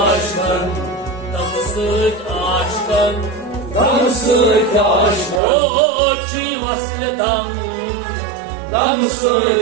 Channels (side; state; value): left; drops out; at 5.4 s